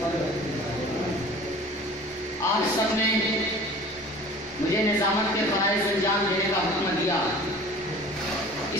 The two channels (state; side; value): normal; both; correlation 0.43